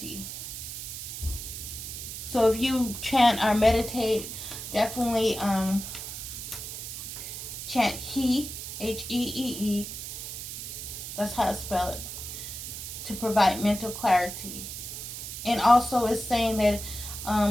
So if you chant or meditate, definitely chant He, Hee. That's how I spell it, to provide mental clarity. And also it's saying that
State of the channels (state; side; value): noise; right; hiss, 8 dB below the sound